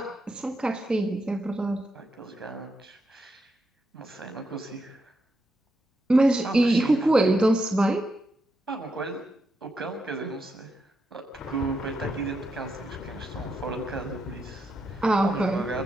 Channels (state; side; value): normal; both; correlation 0.84